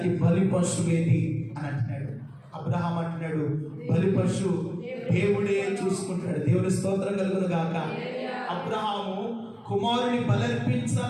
బలి పశువు ఏది అని అంటున్నాడు. అబ్రహాం అంటున్నాడు, బలి పశువు దేవుడే చూసుకుంటాడు. దేవుని స్తోత్రం కలుగును గాక. అబ్రహాము కుమారుని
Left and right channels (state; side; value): identical; both; correlation 1.00